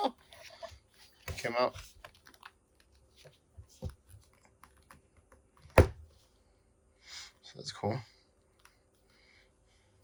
Came out. So that's cool.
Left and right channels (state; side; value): identical; both; correlation 1.00